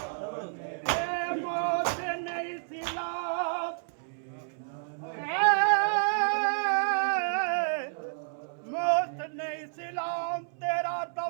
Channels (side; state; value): left; silent; 58 dB below the other